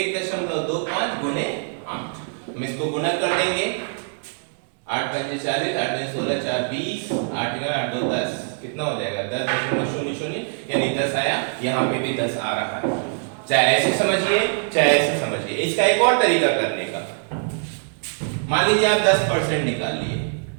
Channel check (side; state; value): left; silent; 61 dB below the other